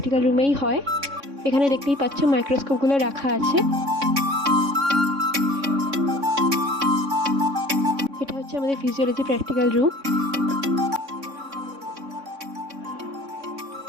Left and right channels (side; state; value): left; late; 3.6 ms